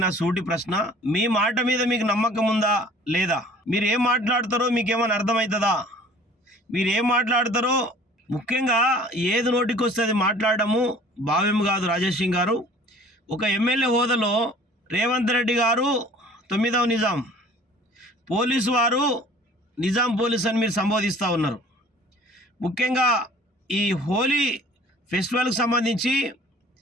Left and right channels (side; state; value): both; normal; correlation 0.49